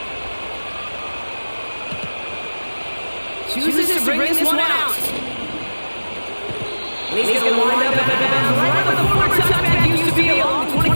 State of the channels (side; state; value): both; inverted; correlation -1.00